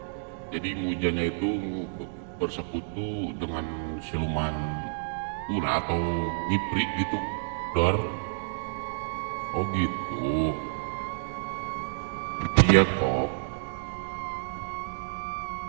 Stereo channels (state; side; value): silent; left; digital silence